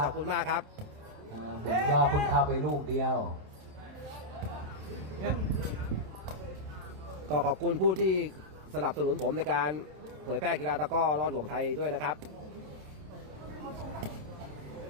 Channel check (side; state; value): left; late; 27 ms